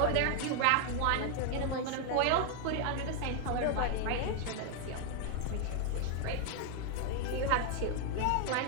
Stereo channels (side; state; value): both; different; correlation 0.00